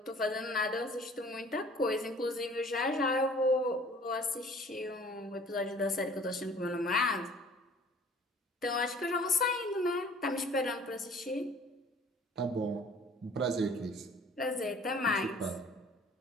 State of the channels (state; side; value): normal; both; correlation 0.51